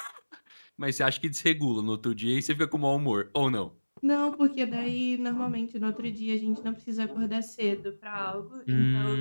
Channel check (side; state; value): both; inverted; correlation -1.00